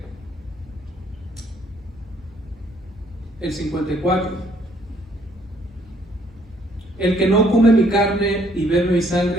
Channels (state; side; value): normal; both; correlation 0.65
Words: el 54, el que no come mi carne y bebe mi